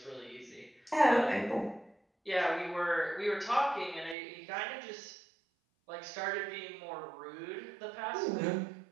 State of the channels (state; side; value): drops out; left; at 4.2 s